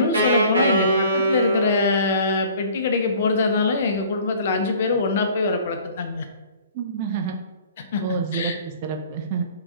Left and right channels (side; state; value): both; inverted; correlation -0.50